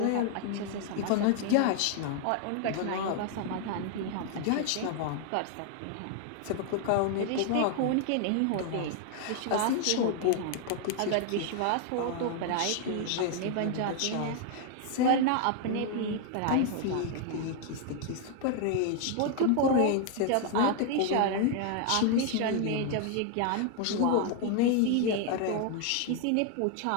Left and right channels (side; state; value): both; different; correlation 0.00